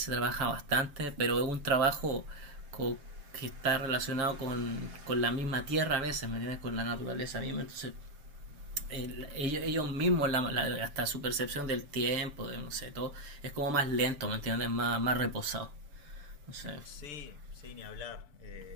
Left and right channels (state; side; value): late; left; 6.9 ms